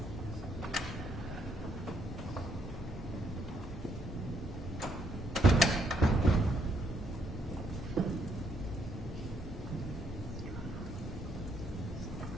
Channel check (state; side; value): normal; both; correlation 0.72